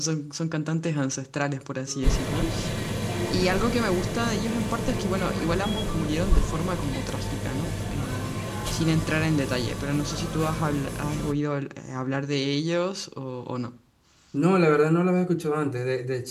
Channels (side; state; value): both; identical; correlation 1.00